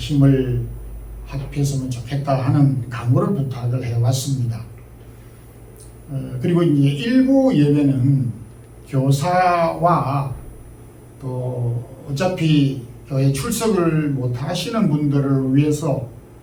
합했으면 좋겠다 하는 강구를 부탁을 해왔습니다. 그리고 이제 1부 예배는 교사와 또 어차피 교회 출석을 못 하시는 분들을 위해서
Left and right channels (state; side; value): identical; both; correlation 1.00